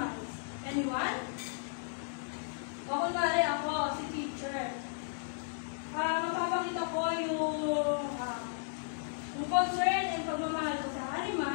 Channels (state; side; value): silent; right; digital silence